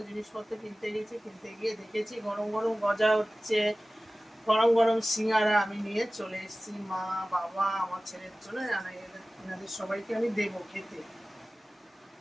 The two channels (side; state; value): both; normal; correlation 0.97